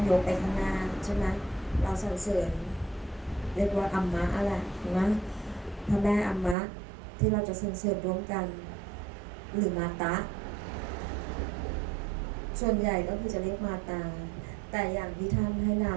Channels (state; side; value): drops out; left; at 6.6 s